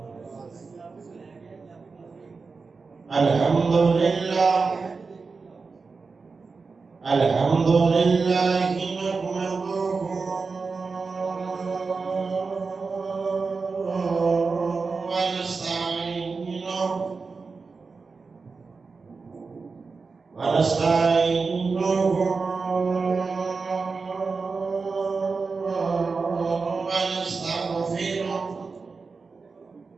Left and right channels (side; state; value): left; quieter; 4.5 dB